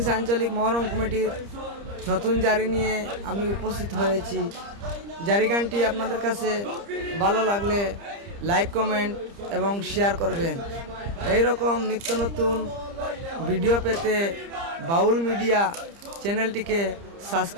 আঞ্চলিক মহরম কমিটির নতুন জারি নিয়ে আমি উপস্থিত হয়েছি। জারি গানটি আপনাদের কাছে ভালো লাগলে লাইক, কমেন্ট এবং শেয়ার করবেন। এই রকম নিত্য নতুন ভিডিও পেতে বাউল মিডিয়া চ্যানেলটিকে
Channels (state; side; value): late; left; 30 ms